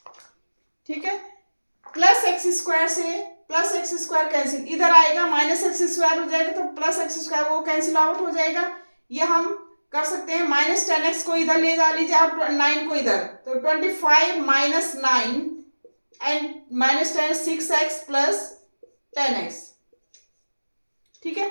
ठीक है, प्लस एक्स स्क्वायर से प्लस एक्स स्क्वायर कैंसिल, इधर आएगा माइनस एक्स स्क्वायर हो जाएगा तो प्लस एक्स स्क्वायर वो कैंसिल आउट हो जाएगा। ये हम कर सकते हैं -10x को इधर ले जा लीजिए और 9 को इधर, तो 25 minus 9 and -10 6x plus 10x। ठीक है,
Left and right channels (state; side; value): inverted; both; correlation -1.00